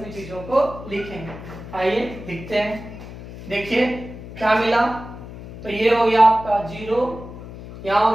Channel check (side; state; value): left; noise; hum, 13 dB below the sound